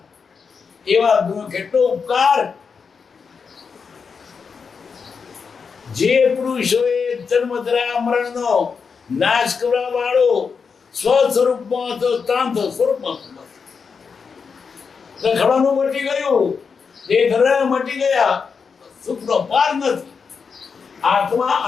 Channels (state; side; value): quieter; right; 5.7 dB